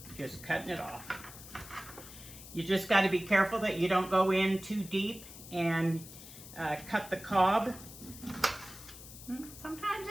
just cutting it off. You just got to be careful that you don't go in too deep and cut the cob. Sometimes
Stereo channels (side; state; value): left; noise; hiss, 15 dB below the sound